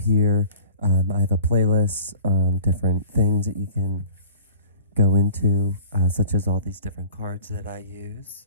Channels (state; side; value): inverted; both; correlation -0.46